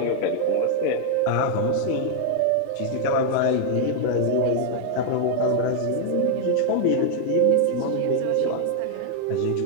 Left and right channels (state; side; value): different; both; correlation 0.00